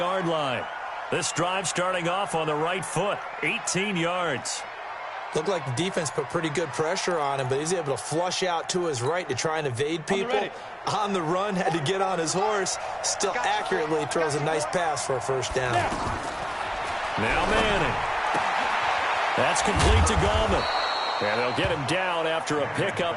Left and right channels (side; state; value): both; identical; correlation 1.00